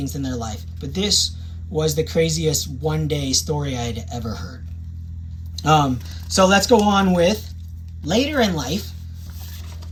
in their life. But this was the craziest one-day story I had ever heard. So let's go on with later in life.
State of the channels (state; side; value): identical; both; correlation 1.00